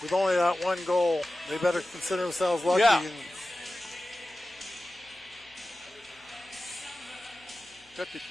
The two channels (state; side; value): normal; both; correlation 0.95